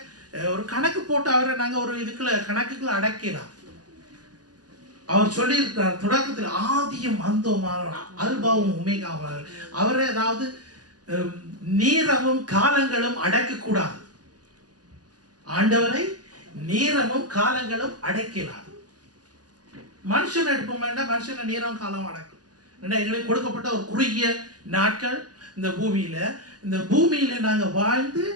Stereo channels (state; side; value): late; left; 0.69 ms